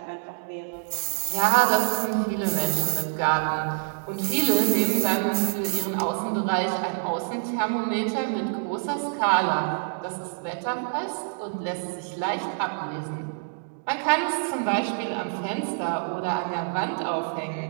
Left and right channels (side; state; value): left; silent; digital silence